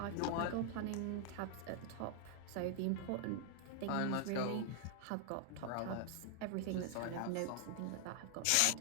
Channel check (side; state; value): both; different; correlation 0.00